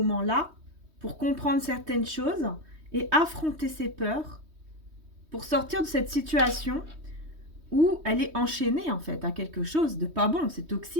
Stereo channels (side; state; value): left; late; 3.2 ms